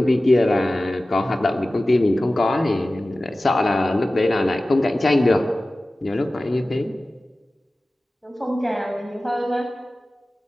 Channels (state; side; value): normal; both; correlation 0.96